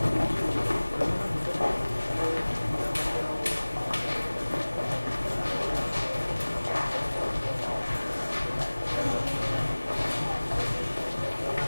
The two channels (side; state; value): both; inverted; correlation -1.00